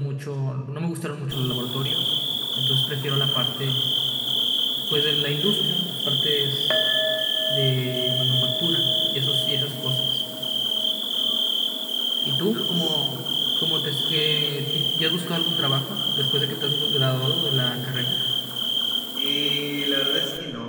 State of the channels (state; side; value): identical; both; correlation 1.00